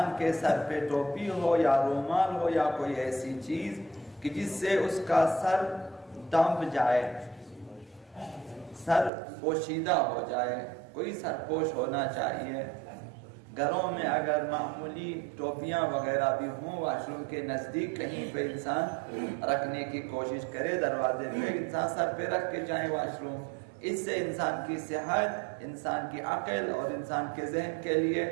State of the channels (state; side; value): drops out; left; at 9.1 s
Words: کے سر پہ ٹوپی ہو یا رومال ہو یا کوئی ایسی چیز کہ جس سے اس کا سر ڈھانپ جائے، سر پوشیدہ ہو جائے، کوئی سرپوش ہونا چاہیے۔ گھروں میں اگر معمولی ٹوپیاں وغیرہ بھی ہوں، واش روم کے نزدیک کہیں پہ انسان رکھنے کی کوشش کرے، دروازے پہ انسان سر پہ رکھ کے جائے واش روم۔ اس سے انسان کی صحت، انسان کی عقل اور انسان کے ذہن کے لیے